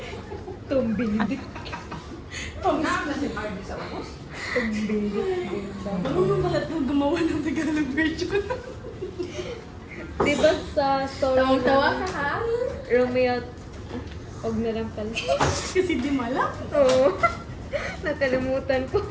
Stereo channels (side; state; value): both; identical; correlation 1.00